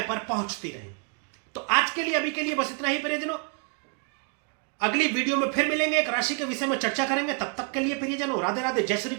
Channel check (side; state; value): left; quieter; 37.7 dB